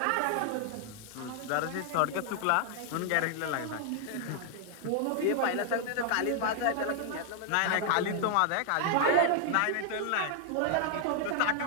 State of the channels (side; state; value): both; different; correlation 0.00